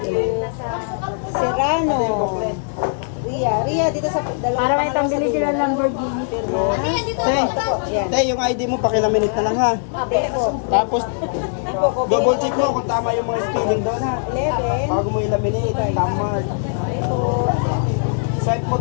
you. Serrano. Ria, dito sa dalawa. Para may pambili sila ng Lamborghini. Pirma. Te, Yan. te, yung ID mo, pakilaminate na lang ha. Tapos, double check mo kung tama yung mga spelling doon ha. 11. Bago mo ilaminate, tama. Swipe mo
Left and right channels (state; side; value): silent; right; 66 dB below the other